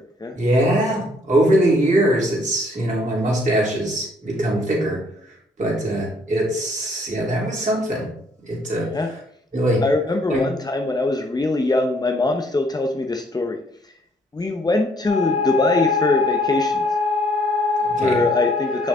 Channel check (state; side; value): normal; both; correlation 0.64